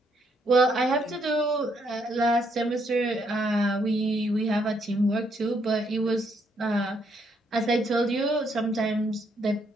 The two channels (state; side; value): normal; both; correlation 0.73